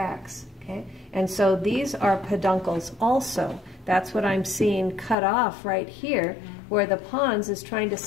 Okay? And so these are peduncles also. That's what I'm seeing cut off right here, where the pons is trying to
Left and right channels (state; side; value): drops out; right; at 5.2 s